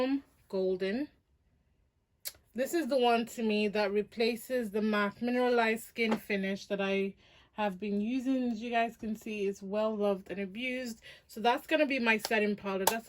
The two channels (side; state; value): both; identical; correlation 1.00